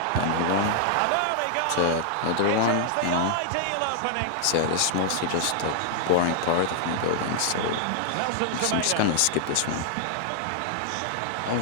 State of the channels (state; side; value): different; both; correlation -0.01